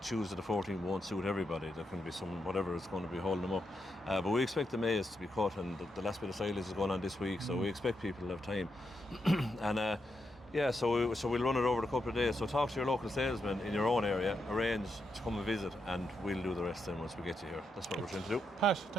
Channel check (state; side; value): normal; both; correlation 0.83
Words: Tuesday the 14th won't suit everybody. There can be some whatever is going to be holding them up, but we expect the maize to be cut, and the last bit of silage is going on this week, so we expect people to have time. And so we'll run it over a couple of days. So talk to your local salesman in your own area, arrange to come and visit, and we'll do the rest then once we get you here. That's what we're trying to do. Pat,